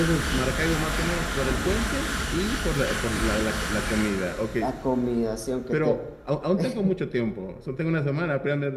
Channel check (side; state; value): both; identical; correlation 1.00